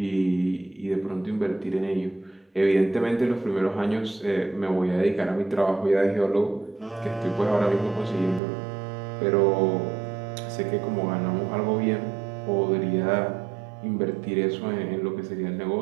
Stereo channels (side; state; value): left; drops out; at 8.4 s